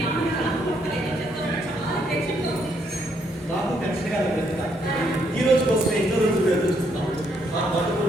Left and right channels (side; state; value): both; normal; correlation 0.73